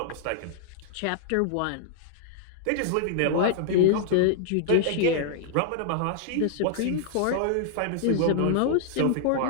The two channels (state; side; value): different; both; correlation -0.01